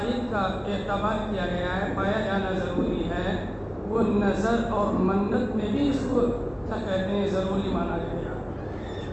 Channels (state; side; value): identical; both; correlation 1.00